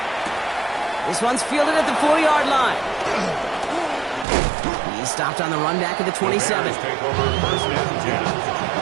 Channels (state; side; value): drops out; left; at 4.2 s